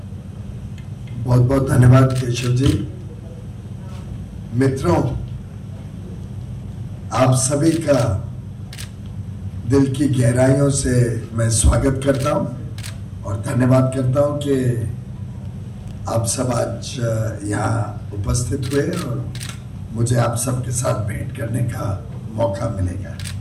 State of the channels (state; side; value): identical; both; correlation 1.00